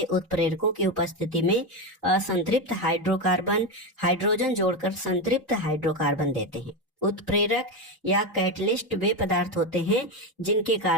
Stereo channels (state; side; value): normal; both; correlation 0.13